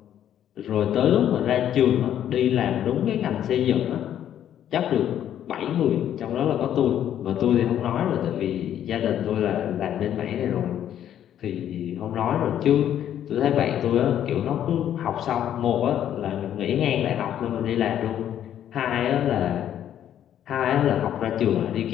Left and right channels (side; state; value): right; quieter; 10.5 dB